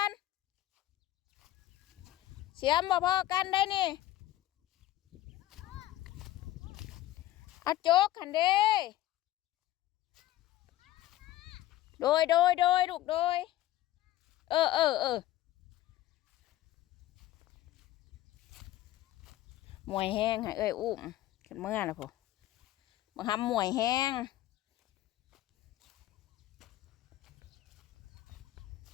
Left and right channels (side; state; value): right; quieter; 14.9 dB